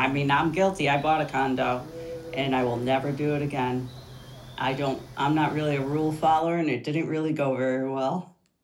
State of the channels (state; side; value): identical; both; correlation 1.00